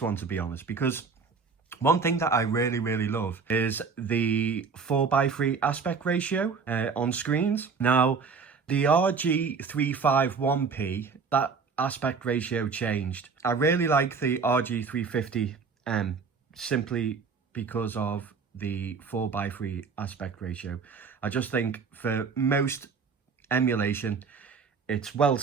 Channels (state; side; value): quieter; left; 5.3 dB